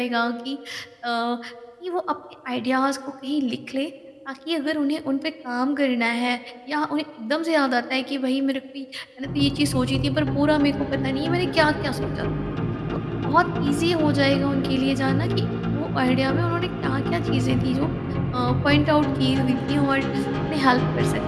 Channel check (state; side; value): identical; both; correlation 1.00